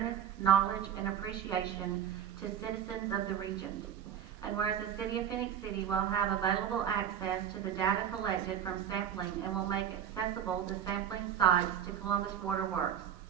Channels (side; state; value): left; quieter; 9.2 dB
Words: knowledge, and appreciation to citizens of the region. And whereas the City of Phenix City will have available access to the data collected from sampling and will make accessible the sampling sites to Columbus Waterworks.